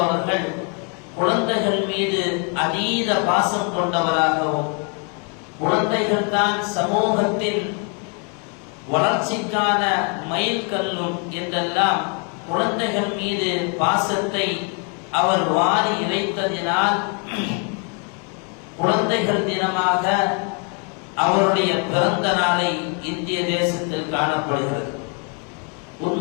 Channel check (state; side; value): quieter; right; 38.2 dB